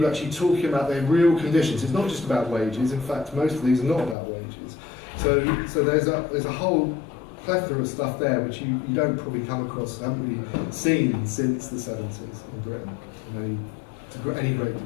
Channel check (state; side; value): drops out; right; at 4.2 s